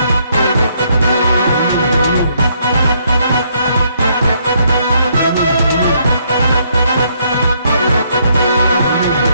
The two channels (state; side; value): inverted; both; correlation -0.70